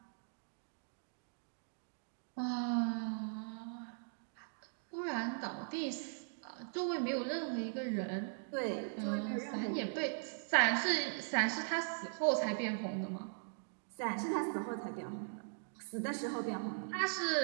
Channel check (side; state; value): left; silent; digital silence